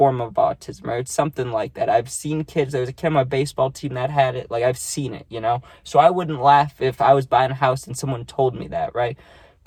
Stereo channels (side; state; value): both; identical; correlation 1.00